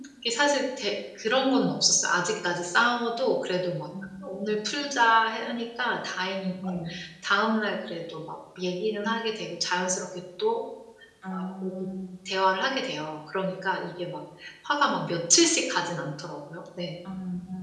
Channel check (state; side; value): identical; both; correlation 1.00